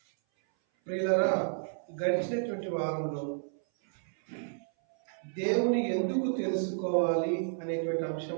ప్రియులారా, గడిచినటువంటి వారంలో దేవుని ఎందుకు తెలుసుకోవాలి అనేటువంటి అంశం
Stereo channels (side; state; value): left; silent; 57 dB below the other